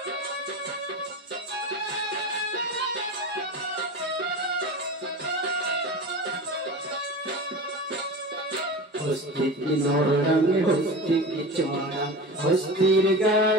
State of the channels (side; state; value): both; normal; correlation 0.30